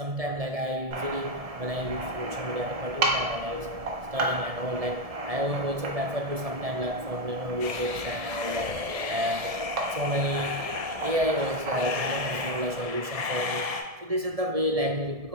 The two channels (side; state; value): left; late; 1.7 ms